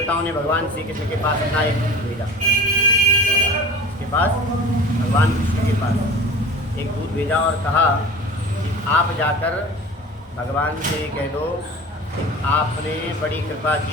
ने भगवान श्री कृष्ण के पास अपना एक दूत भेजा, इसके पास भगवान कृष्ण के पास एक दूत भेजा और कहा कि आप जाकर भगवान से कह दो कि आपने बड़ी कृपा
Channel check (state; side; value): normal; both; correlation 0.38